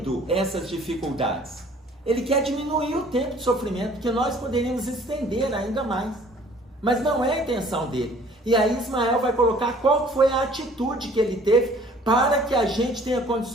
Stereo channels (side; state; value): both; normal; correlation 0.54